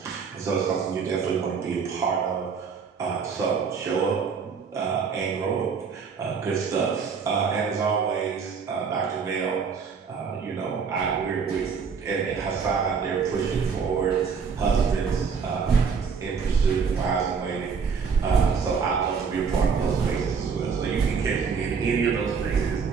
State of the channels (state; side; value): quieter; left; 5.9 dB